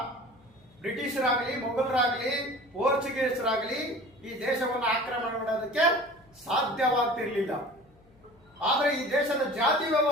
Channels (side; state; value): left; noise; hum, 30 dB below the sound